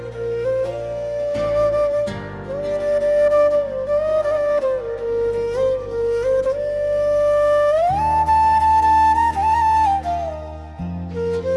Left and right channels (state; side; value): identical; both; correlation 1.00